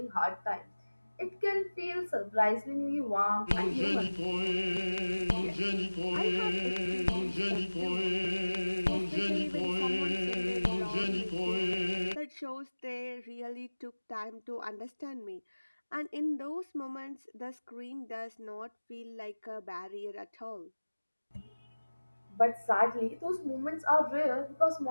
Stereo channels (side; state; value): both; inverted; correlation -1.00